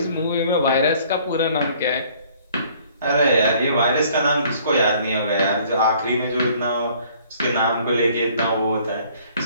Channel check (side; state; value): both; inverted; correlation -0.57